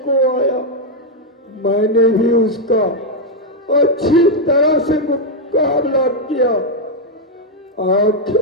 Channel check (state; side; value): normal; both; correlation 0.00